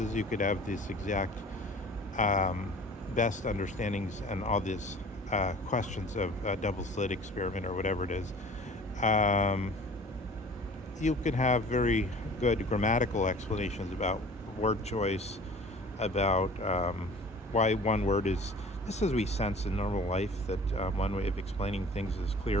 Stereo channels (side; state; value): both; normal; correlation 0.46